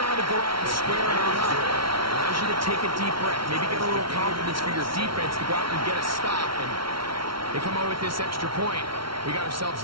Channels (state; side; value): late; left; 0.74 ms